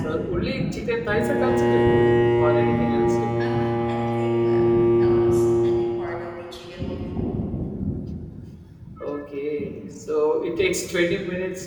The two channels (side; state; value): both; identical; correlation 1.00